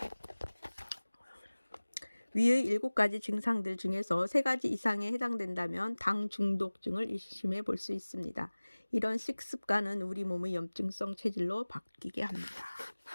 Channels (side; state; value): both; inverted; correlation -1.00